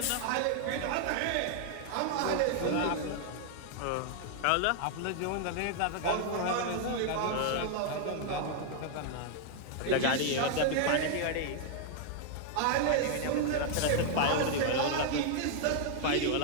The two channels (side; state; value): both; different; correlation 0.00